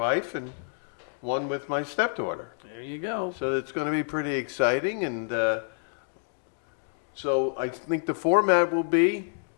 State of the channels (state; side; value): silent; right; digital silence